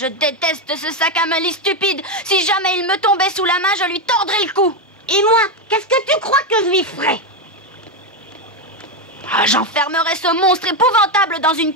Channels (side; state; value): both; normal; correlation 0.08